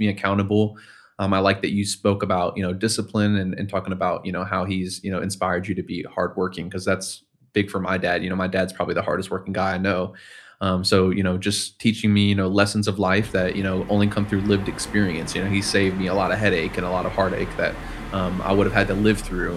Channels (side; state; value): both; identical; correlation 1.00